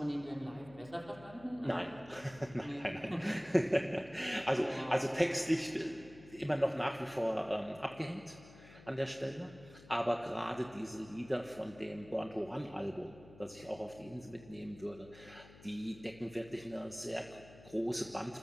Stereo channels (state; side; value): noise; left; hum, 20 dB below the sound